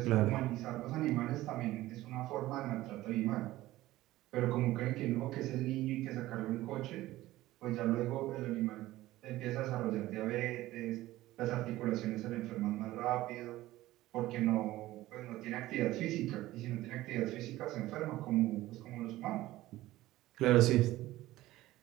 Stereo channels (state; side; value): quieter; left; 16.5 dB